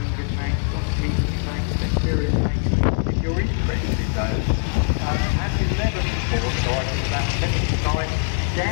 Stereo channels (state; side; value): silent; right; 64 dB below the other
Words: tanks, on Keaton tanks, Centurion tanks. If you're interested in those, as in never before, so I think about 10 times